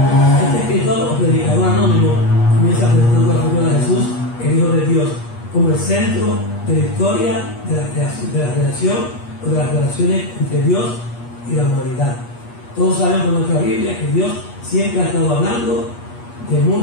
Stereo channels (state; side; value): late; right; 8.4 ms